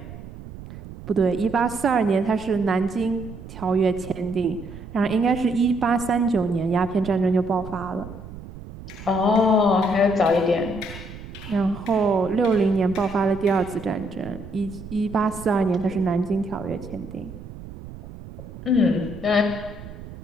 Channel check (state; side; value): noise; right; rumble, 14 dB below the sound